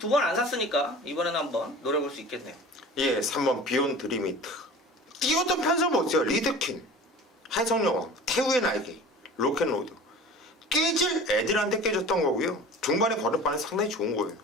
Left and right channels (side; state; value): both; normal; correlation 0.40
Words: 안 샀으니까 이번에는 한번 노려볼 수 있겠네요. 예, 3번 비욘드 리미트. 뛰었던 편성 보세요. 리드킨, 해성여왕, 태우의 날개, 로켓로드. 깨질 애들한테 깨졌던 거고요. 중반에 걸음반은 상당히 좋은 거예요.